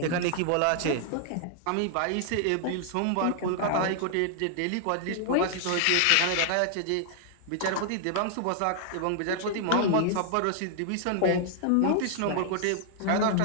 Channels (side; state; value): both; different; correlation -0.01